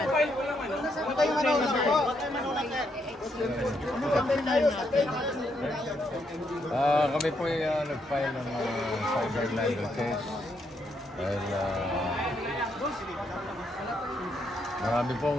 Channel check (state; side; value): normal; both; correlation 0.77